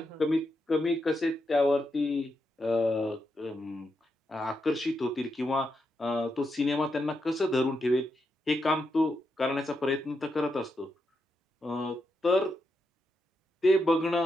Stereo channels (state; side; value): normal; both; correlation 0.84